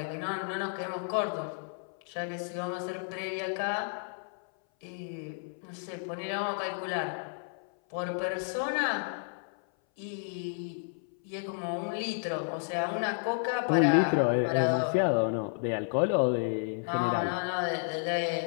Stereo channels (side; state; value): right; silent; 57 dB below the other